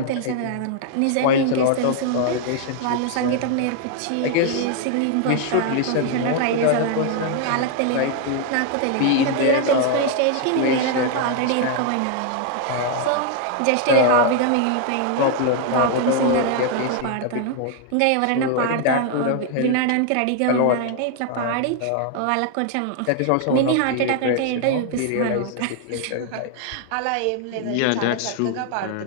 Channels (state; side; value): different; both; correlation 0.00